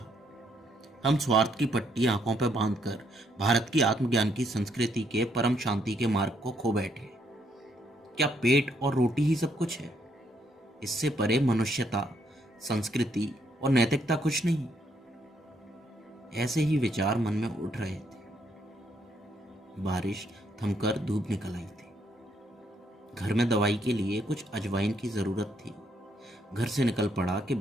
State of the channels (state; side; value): normal; both; correlation 0.73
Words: हम स्वार्थ की पट्टी आंखों पर बांधकर भारत की आत्मज्ञान की संस्कृति के परम शांति के मार्ग को खो बैठे। क्या पेट और रोटी ही सब कुछ है? इससे परे मनुष्यता, संस्कृति और नैतिकता कुछ नहीं। ऐसे ही विचार मन में उठ रहे थे। बारिश थमकर धूप निकल आई थी। घर में दवाई के लिए कुछ अजवाइन की जरूरत थी। घर से निकल पड़ा कि